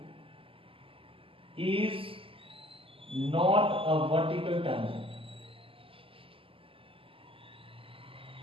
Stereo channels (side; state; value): left; late; 0.26 ms